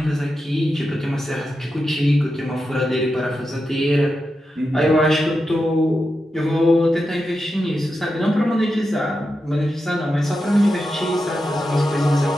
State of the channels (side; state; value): both; normal; correlation 0.89